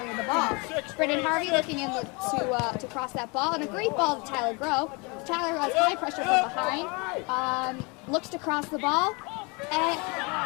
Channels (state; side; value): quieter; right; 29.4 dB